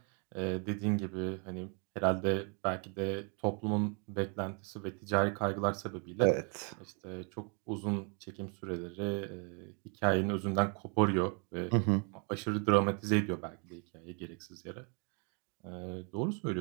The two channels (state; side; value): quieter; left; 36.1 dB